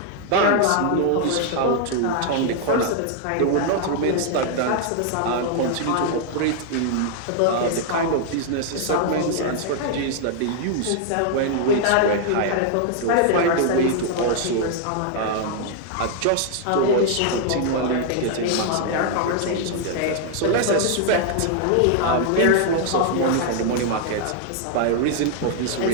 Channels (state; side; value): different; both; correlation 0.00